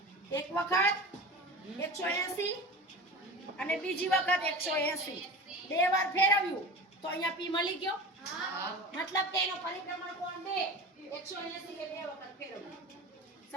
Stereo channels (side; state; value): both; normal; correlation 0.32